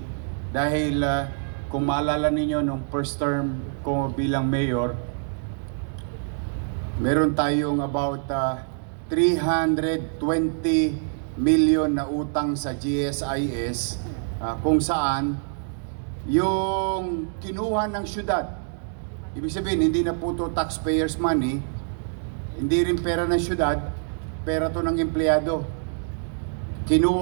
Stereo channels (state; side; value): silent; left; digital silence